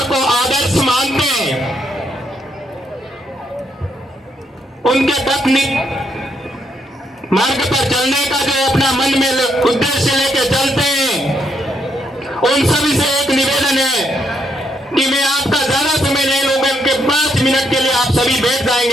को आदर्श मानते हैं, उनके पत्नी मार्ग पर चलने का जो अपना मन में उद्देश्य लेके चलते हैं, उन सभी से एक निवेदन है कि मैं आपका ज्यादा समय नहीं लूंगा, उनके 5 मिनट के लिए आप सभी बैठ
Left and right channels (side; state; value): both; normal; correlation 0.76